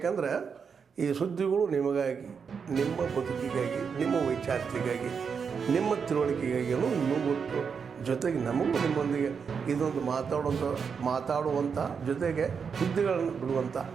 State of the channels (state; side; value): quieter; left; 6.2 dB